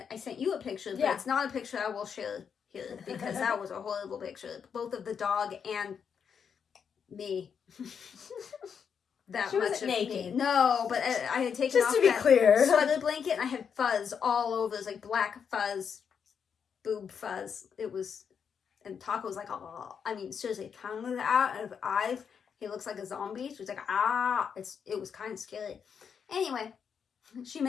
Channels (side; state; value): right; quieter; 7.0 dB